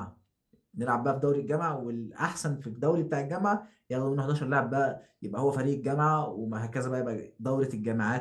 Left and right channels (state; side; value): identical; both; correlation 1.00